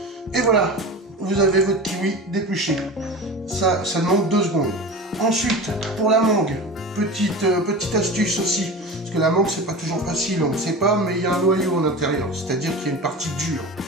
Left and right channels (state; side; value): normal; both; correlation 0.31